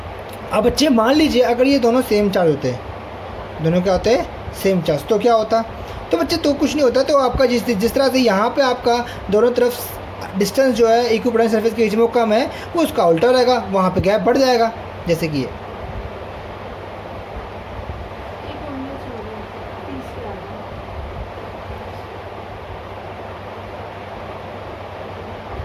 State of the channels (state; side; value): identical; both; correlation 1.00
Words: अब बच्चे मान लीजिए अगर ये दोनों सेम चार्ज होते हैं, दोनों क्या होते हैं, सेम चार्ज, तो क्या होता? तो बच्चे तो कुछ नहीं होता, तो आपका जिस तरह से यहाँ पे आपका दोनों तरफ डिस्टेंस जो है इक्विपोटेंशियल सरफेस के बीच में वो कम है, वो उसका उल्टा रहेगा, वहाँ पे गैप बढ़ जाएगा, जैसे कि ये।